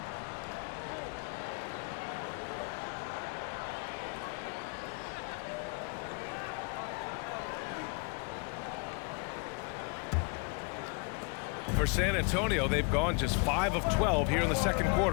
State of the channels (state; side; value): quieter; right; 32.1 dB